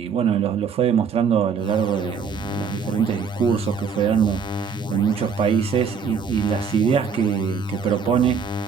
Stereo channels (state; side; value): quieter; left; 6.2 dB